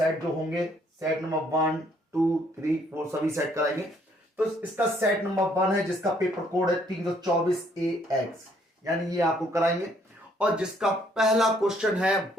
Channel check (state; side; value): normal; both; correlation 0.66